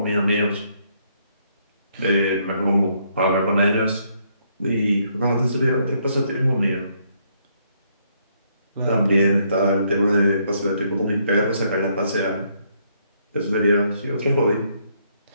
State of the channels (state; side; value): inverted; both; correlation -0.71